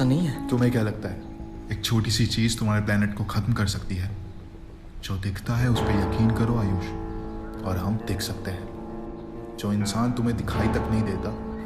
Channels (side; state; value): both; identical; correlation 1.00